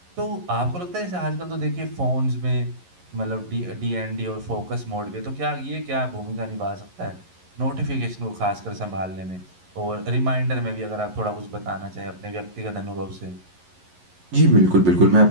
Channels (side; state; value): left; late; 11 ms